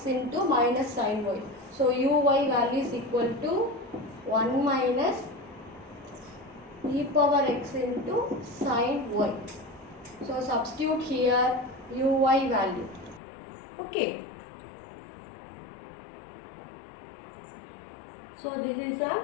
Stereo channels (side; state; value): right; drops out; at 13.2 s